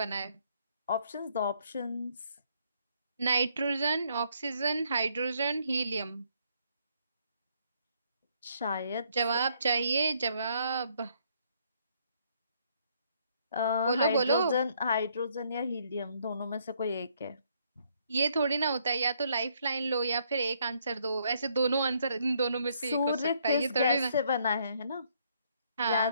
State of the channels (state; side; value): inverted; both; correlation -0.69